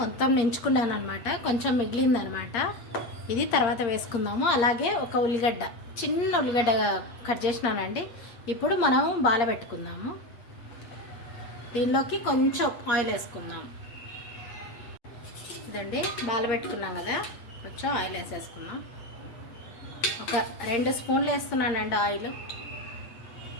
నించుకున్నాను అనమాట. కొంచెం మిగిలిందనమాట. ఇది తర్వాత వేసుకుందాము. అలాగే ఒక ఉల్లిగడ్డ, చిన్న ఉల్లిగడ్డ కట్ చేసినానండి. ఇప్పుడు మనం బాల పెట్టుకుందాము. దీనిలోకి కొంచెం ఆయిల్ వేసుకుందాం. ఇదండి, బాల పెట్టుకున్నాం కదా, కొంచెం ఆయిల్ వేసేసుకుందాం. ఒక 2 స్పూన్లు వేస్తున్నానండి ఆయిల్,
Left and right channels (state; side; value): late; right; 8.5 ms